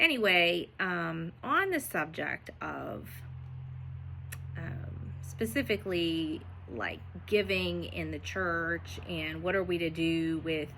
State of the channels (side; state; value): both; identical; correlation 1.00